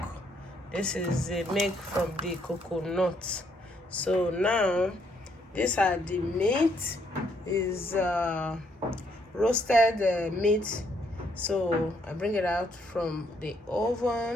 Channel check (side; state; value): both; normal; correlation 0.71